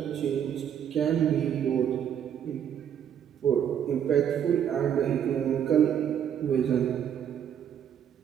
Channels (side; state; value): left; quieter; 9.1 dB